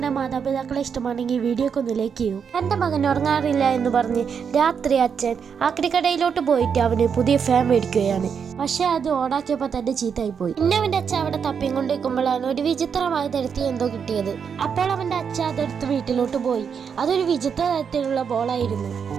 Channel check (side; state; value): left; quieter; 6.8 dB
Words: മാതാപിതാക്കളെ ഇഷ്ടമാണെങ്കിൽ വീഡിയോക്ക് ഒന്ന് ലൈക്ക് ചെയ്യൂ. എന്റെ മകൻ ഉറങ്ങാറില്ല എന്ന് പറഞ്ഞ് രാത്രി അച്ഛൻ ആക്രിക്കടയിലോട്ട് പോയിട്ട് അവന് പുതിയ ഫാൻ മേടിക്കുകയാണ്. പക്ഷെ അത് ഓടാക്കിയപ്പോ തന്നെ ചീത്തായി പോയി. പിന്നെ അവന്റെ അച്ഛൻ അവിടെ തപ്പിയും കൊണ്ടിരിക്കുമ്പോഴാണ് ഒരു വിചിത്രമായ തരത്തിൽ എന്തോ കിട്ടിയത്. അപ്പോൾ അവന്റെ അച്ഛൻ അതെടുത്ത് വീട്ടിലോട്ട് പോയി. അതൊരു വിചിത്ര തരത്തിലുള്ള ബോളായിരുന്നു.